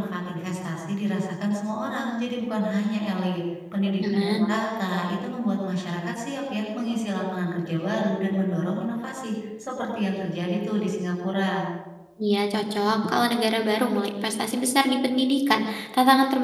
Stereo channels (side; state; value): both; identical; correlation 1.00